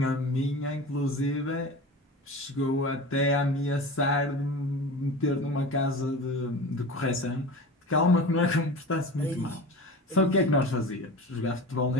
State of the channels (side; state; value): both; normal; correlation 0.33